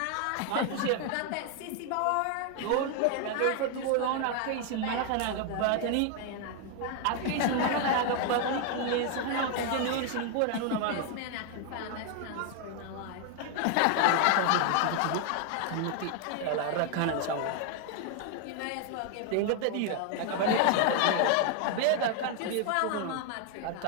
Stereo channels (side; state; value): both; different; correlation 0.00